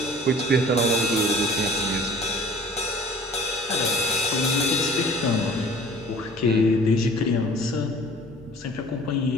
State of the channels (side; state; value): both; normal; correlation 0.48